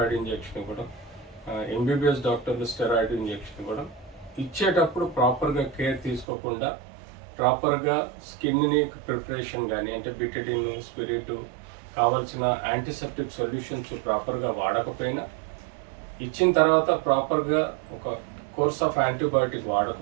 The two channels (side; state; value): left; drops out; at 6.2 s